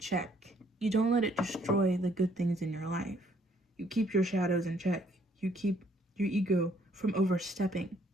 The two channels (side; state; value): both; normal; correlation 0.65